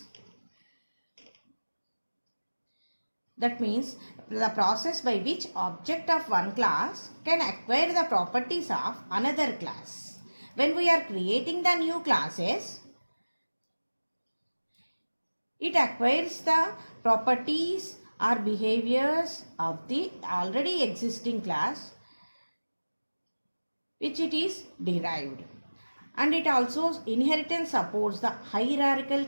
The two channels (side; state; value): both; inverted; correlation -1.00